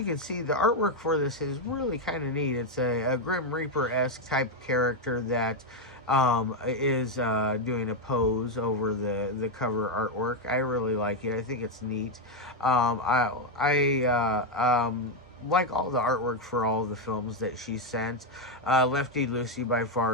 can see, the artwork for this is really kind of neat. It's a Grim Reaper-esque type character that is doing a pose over the cover artwork. I really like it. I think it's neat. I like all the artwork for all the films that she sent. Lefty Lucy by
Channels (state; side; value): normal; both; correlation 0.05